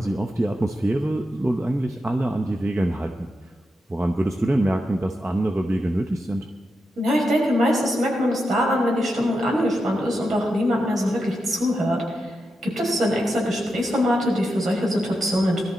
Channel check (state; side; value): normal; both; correlation 0.87